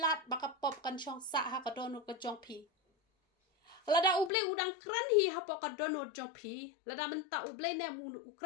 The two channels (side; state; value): right; drops out; at 4.3 s